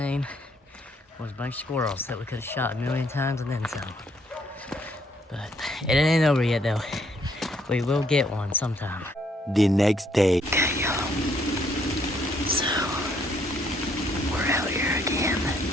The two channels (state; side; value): normal; both; correlation 0.69